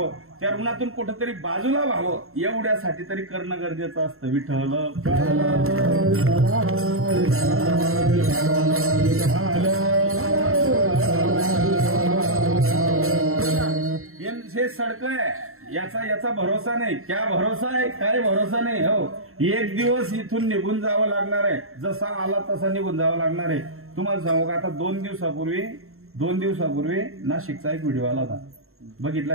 त्या ऋणातून कुठेतरी बाजूला व्हावं, एवढ्यासाठी तरी करणं गरजेचं असतं. विठ्ठल हे सडक आहे, याचा भरोसा नाही. क्या भरोसा आहे? काय भरोसा नाही. हो, एक दिवस इथून निघून जावं लागणार आहे. जसा आला तसा निघून जावं लागणार आहे. तुम्हाला सांगू का, आता 2 दिवसापूर्वी नाशिकचा एक व्हिडिओ आला होता. बघितला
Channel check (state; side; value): late; left; 0.62 ms